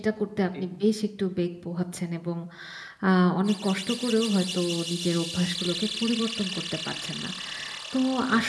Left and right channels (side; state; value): both; identical; correlation 1.00